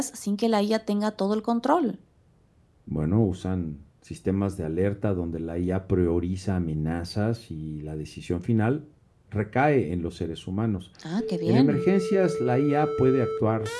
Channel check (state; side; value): identical; both; correlation 1.00